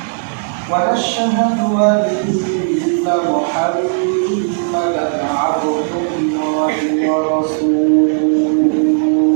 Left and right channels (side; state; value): left; silent; 69 dB below the other